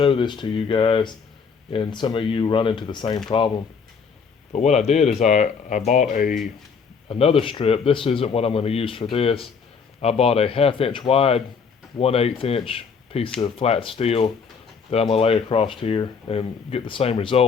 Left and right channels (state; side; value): quieter; right; 5.8 dB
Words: this to you guys, and some of you run into the same problem. But what I did is I bought another strip. This isn't what I'm going to use for this. I bought a 1/2 inch wide, 1/8 inch piece of flat steel that I'm going to lay across here and get the same